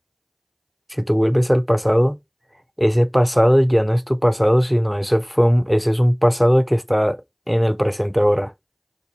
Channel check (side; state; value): both; identical; correlation 1.00